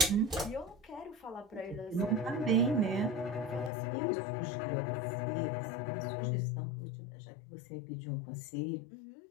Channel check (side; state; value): right; drops out; at 3.7 s